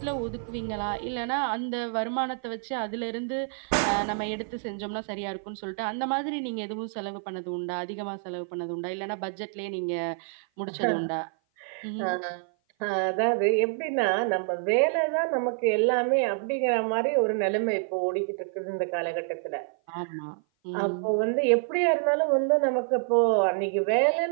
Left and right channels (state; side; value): silent; left; 55 dB below the other